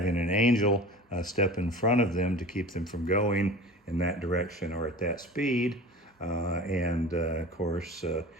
an angel step in front of them to keep them from going in that direction or at that speed. Of course,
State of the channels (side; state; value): both; normal; correlation 0.38